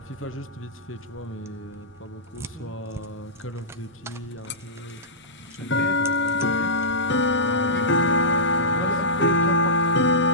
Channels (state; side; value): normal; both; correlation -0.16